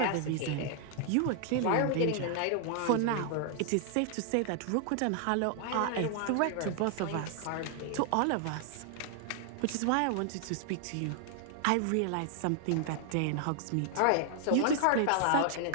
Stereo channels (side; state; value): both; different; correlation 0.00